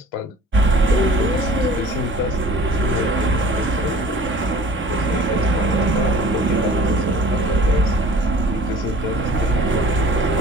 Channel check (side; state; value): both; normal; correlation 0.48